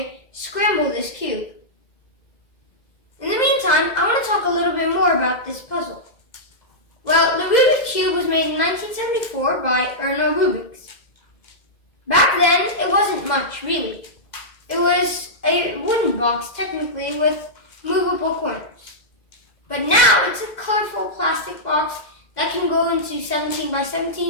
scramble this cube. In the meantime, I want to talk a little bit more about this puzzle. Well, the Rubik's Cube was made in 1974 by Rubik. Back then, it wasn't much, really. It was a wooden box, technically, with movable corners. But now, it's a colorful plastic box that can go into 17 by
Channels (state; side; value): late; right; 2.0 ms